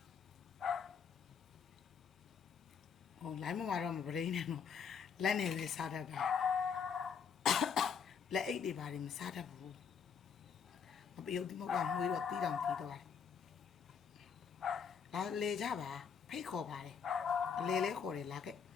ဟိုလိုင်းမတော့မပရင်းနဲ့တော့လက်နဲ့ပဲစားတတ်တာလက်အိတ်တွေပါတယ်မစားတတ်ဘူးမပြုတ်ဒီမဟုတ်ကမွေးတော့တီးတောင်တီးတော့လာလေကြပါဖိတ်ခေါ်ပါတယ်အလေလဲခေါ်တယ်လာခဲ့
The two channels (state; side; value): quieter; right; 6.7 dB